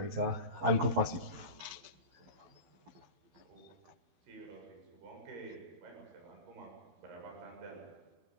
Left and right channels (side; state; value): left; late; 12 ms